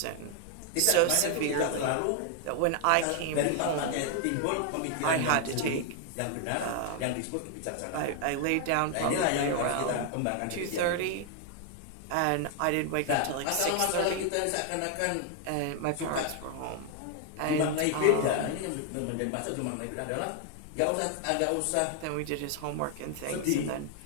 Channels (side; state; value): both; different; correlation 0.00